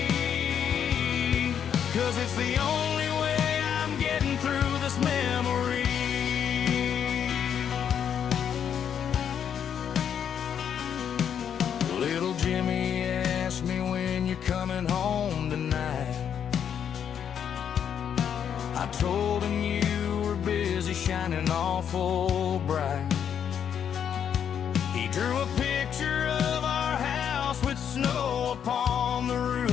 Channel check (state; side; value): quieter; right; 8.4 dB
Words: 'cause it's the only way I'm getting through this memory. Little Jimmy asked me when you're coming home tonight. I told him you were busy shining awful bright. He drew a picture of our house with snow upon the